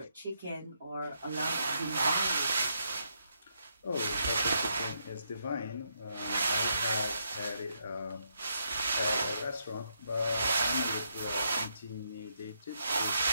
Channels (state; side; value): inverted; both; correlation -0.78